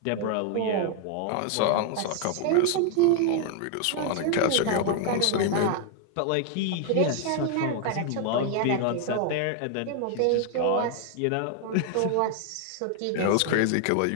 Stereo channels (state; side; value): different; both; correlation 0.00